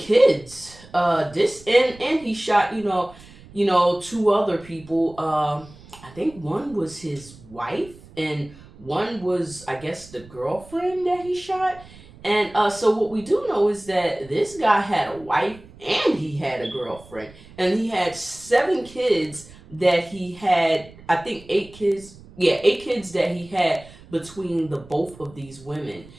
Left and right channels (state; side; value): noise; right; rumble, 21 dB below the sound